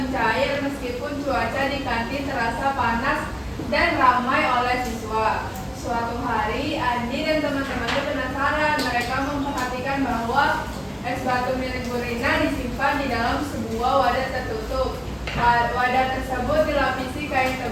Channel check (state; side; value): identical; both; correlation 1.00